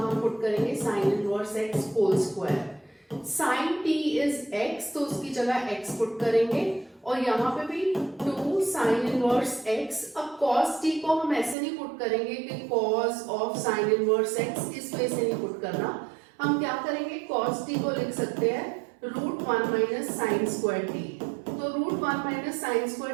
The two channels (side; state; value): left; drops out; at 11.6 s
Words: हम पुट करेंगे sine inverse x whole square. Sine t is x, तो उसकी जगह x पुट करेंगे और यहाँ पे भी 2 साइन इनवर्स x। अब cos t को हम ऐसे नहीं पुट करेंगे कि cos of sine inverse x, इस वे से नहीं पुट करना। हम क्या करेंगे, cos t को लिख सकते हैं √1 माइनस साइन स्क्वायर t, तो √1 माइनस साइन